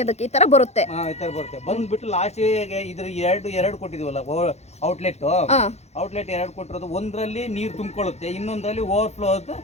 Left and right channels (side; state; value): right; late; 0.31 ms